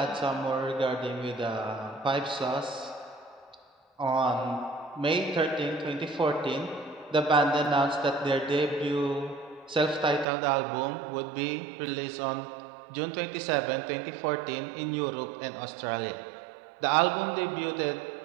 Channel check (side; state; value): left; drops out; at 10.2 s